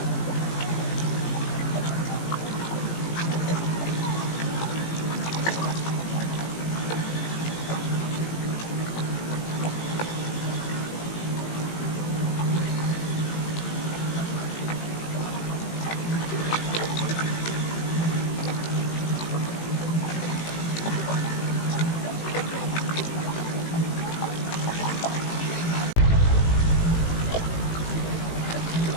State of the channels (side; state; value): right; late; 18 ms